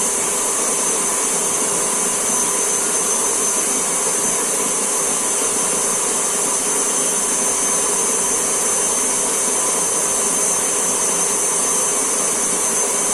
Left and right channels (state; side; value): identical; both; correlation 1.00